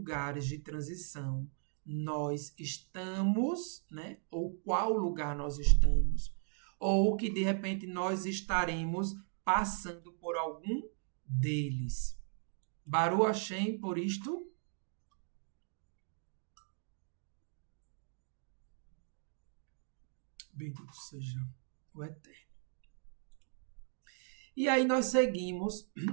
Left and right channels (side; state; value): left; silent; 53 dB below the other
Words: de transição nós estamos, né, ou qual lugar nós estamos, ou que de repente nós estaremos passando por algum deles. Baruch Hashem por isto. Bendito seja o Eterno. E aí nós seguimos